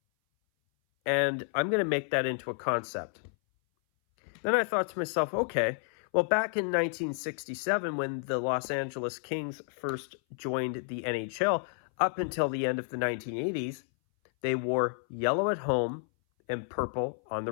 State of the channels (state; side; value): silent; right; 57 dB below the other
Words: and I'm going to make that into a concept. Then I thought to myself, okay, well, back in 1967, when the Los Angeles Kings first joined the NHL, up until the end of the 1980s, they wore yellow at home and purple on the